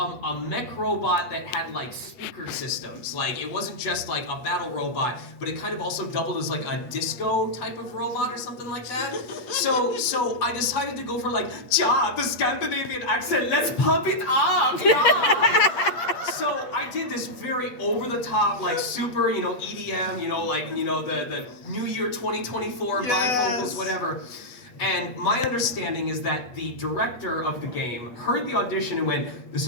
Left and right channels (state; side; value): late; right; 8.1 ms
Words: mech robot that had like speaker systems. Like it wasn't just like a battle robot, but it kind of also doubled as like a disco type of robot or something like that. So I decided to go for like, ja, the Scandinavian accent. Let's pump it up, yeah. So I did this very over-the-top, like super, EDM, the New Year 2024 bifocals, whatever. And my understanding is that the director of the game heard the audition and went, this